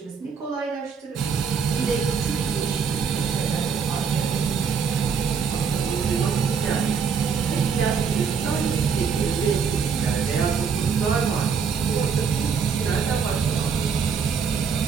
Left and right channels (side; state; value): left; quieter; 6.2 dB